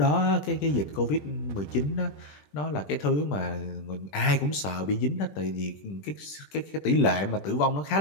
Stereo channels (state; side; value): late; right; 20 ms